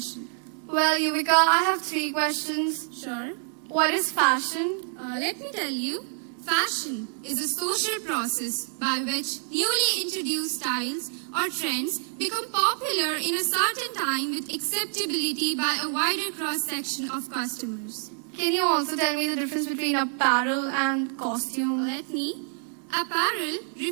Well, Yuvika, I have 3 questions. Sure. What is fashion? Let me tell you, fashion is a social process by which newly introduced styles or trends become popular in a certain time with acceptability by a wider cross-section of customers. Can you also tell me the difference between apparel and costume? Let me. Apparel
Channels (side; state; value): left; silent; 60 dB below the other